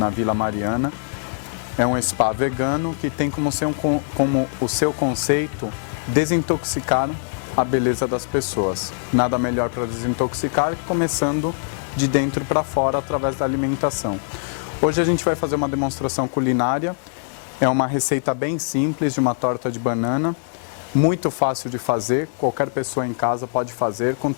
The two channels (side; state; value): right; silent; digital silence